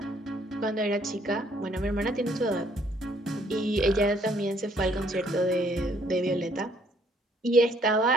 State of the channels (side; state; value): both; normal; correlation 0.65